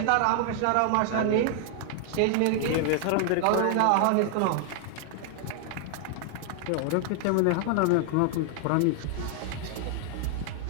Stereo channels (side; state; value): both; different; correlation 0.00